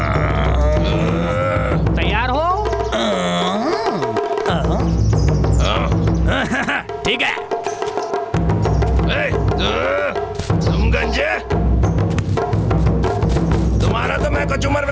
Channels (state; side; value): identical; both; correlation 1.00